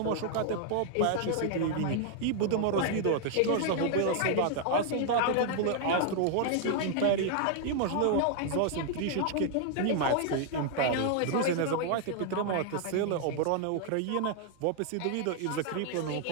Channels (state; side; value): different; both; correlation 0.00